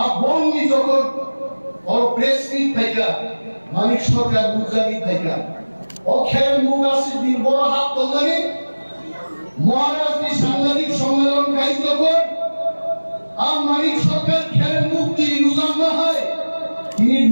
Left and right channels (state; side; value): inverted; both; correlation -1.00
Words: বননি যখন और প্রেস মিট থাইকা মানিক সরকার বুঝাবি থাইকা ও খেল মুগাসি দিন বড় হাত তোলানি মহারাজনি সাংবাদিক সম্মেলন খাই যখন আর মানিক সরকার খেলের মুক্তি রুজান না হয় তিনি